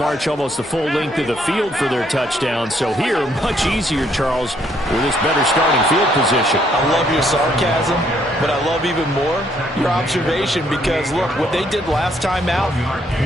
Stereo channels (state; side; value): normal; both; correlation 0.69